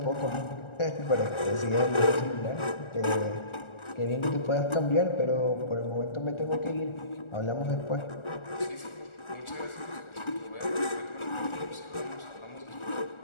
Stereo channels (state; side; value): late; right; 1.4 ms